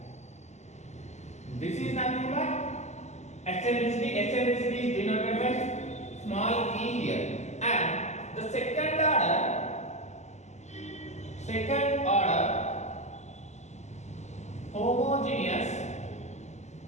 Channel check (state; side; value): late; right; 0.33 ms